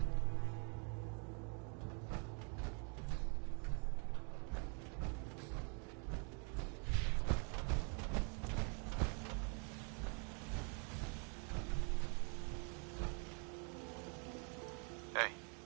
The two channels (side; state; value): left; quieter; 38.8 dB